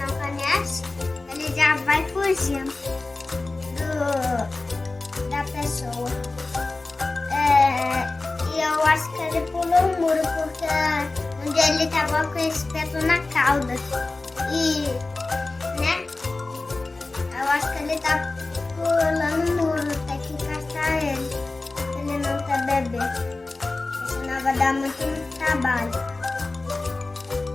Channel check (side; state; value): right; quieter; 3.3 dB